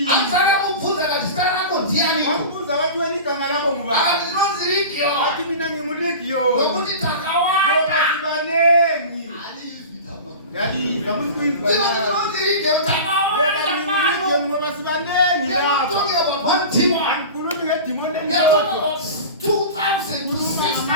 Akatamubvunza akati zita rako ndiani? wambuza wathi wena igama lakho ngubani Akati ndinonzi Legion. wathi mina nginguligiyoni Nokuti ngoba takawanda. sibanengi Alizwi tama. yalizwa musikuizwa Ndinonzi Legion takawanda. ngoba sibanengi We are not lapha talking about one demon. angikhulumi ngedimoni We are talking elilodwa about 2,000 to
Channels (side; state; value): both; inverted; correlation -0.33